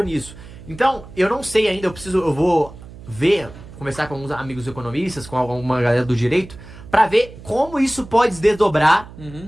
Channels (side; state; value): right; noise; hum, 17 dB below the sound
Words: nisso. Então, eu não sei ainda, eu vou ver, conversar com alguns amigos economistas, com alguma galera do direito, pra ver como isso pode desdobrar.